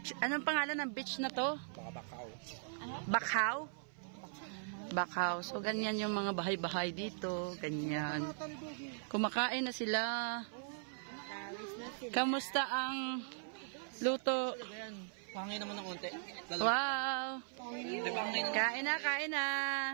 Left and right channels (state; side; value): silent; left; 52 dB below the other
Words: Anong pangalan ng beach na to? Bakaw. Bakaw? Bakaw. So ganyan yung mga bahay-bahay dito. Ganyan. Kumakain na sila. Kamusta ang luto? Pangay naman ng konti. Wow! Kain na, kain na.